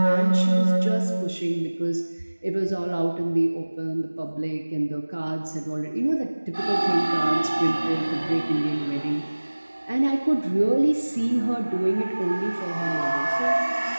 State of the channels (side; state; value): both; inverted; correlation -1.00